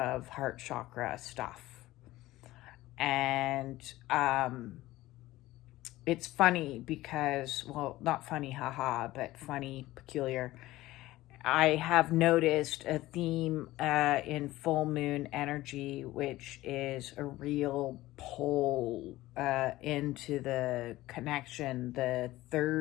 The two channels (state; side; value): quieter; right; 17.1 dB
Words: heart chakra stuff. And it's funny because, well, not funny, haha, but funny, peculiar. I have noticed a theme in full moon energy, which is a real pull into the connection, the